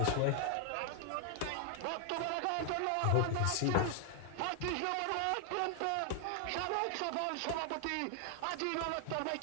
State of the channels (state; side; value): different; both; correlation 0.00